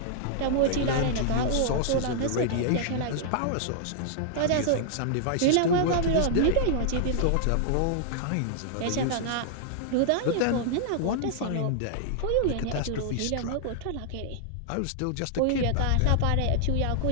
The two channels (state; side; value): different; both; correlation -0.01